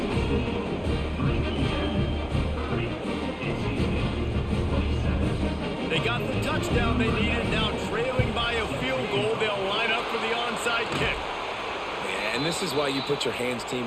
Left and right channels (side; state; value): both; identical; correlation 1.00